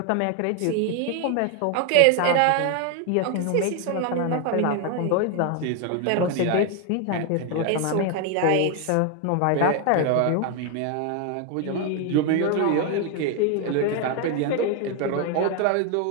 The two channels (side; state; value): both; different; correlation 0.01